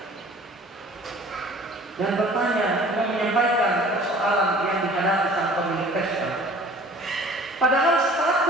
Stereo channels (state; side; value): normal; both; correlation 0.48